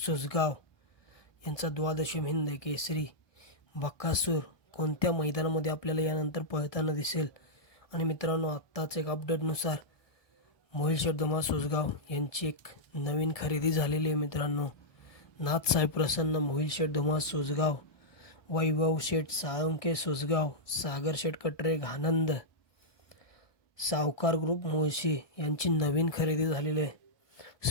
यांचा द्वादशी हिंद केसरी बकासूर कोणत्या मैदानामध्ये आपल्याला यानंतर पळताना दिसेल. आणि मित्रांनो, आत्ताच एक अपडेटनुसार मोहिल शेठ धुमाळ सुसगाव यांची एक नवीन खरेदी झालेली आहे. मित्रांनो, नाथसाहेब प्रसन्न मोहिल शेठ धुमाळ सुसगाव, वैभव शेठ साळुंके सुसगाव, सागर शेठ कटरे आनंद, सावकार ग्रुप मुळशी यांची नवीन खरेदी झालेली आहे.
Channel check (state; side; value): late; right; 1.2 ms